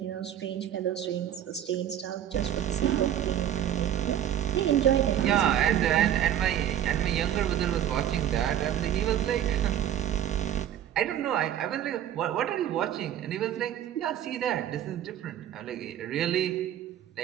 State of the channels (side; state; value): left; quieter; 10.8 dB